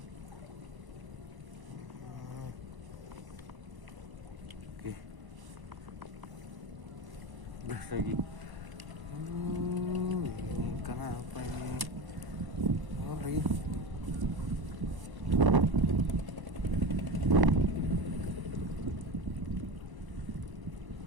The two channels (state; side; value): late; left; 1.0 ms